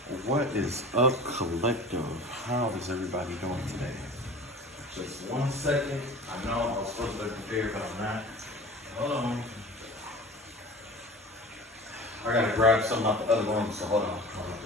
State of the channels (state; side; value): normal; both; correlation 0.39